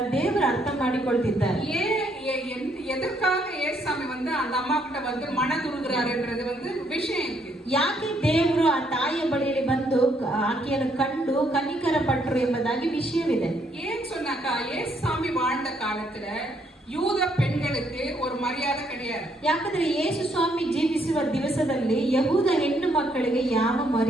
ದೇವರು ಅರ್ಥ ಮಾಡಿಕೊಳ್ತಿದ್ದಾರೆ. எதற்காக ஏசாமி வந்து அந்த அம்மா கிட்ட வந்து மனதுருகிறாருன்றது வந்து விஷயம் இருக்கு. ಯಾಕೆ ದೇವರು ಆ ತಾಯಿಯ ಬಳಿಯಲ್ಲಿ ಬಂದು ಆಕೆಯನ್ನು ಕಂಡು ಕನಿಕರ ಪಟ್ಟರು ಎಂಬುದಾಗಿ ವಿಷಯವಿದೆ. ஏன் சொன்னாக்கா, ஏசாமி வாழ்ந்த காலத்துல யூத பெண்களுக்கு ஒரு மரியாதை கிடையாது. ಯಾಕಂದ್ರೆ ಯೇಸು ಸ್ವಾಮಿ ಜೀವಿಸುವ ದಿವಸದಲ್ಲಿ ಯಹೂದ ಹೆಣ್ಣು ಮಕ್ಕಳಿಗೆ ಯಾವ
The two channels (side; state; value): both; normal; correlation 0.71